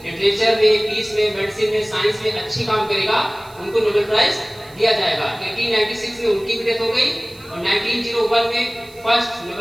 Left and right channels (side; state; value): right; noise; hiss, 25 dB below the sound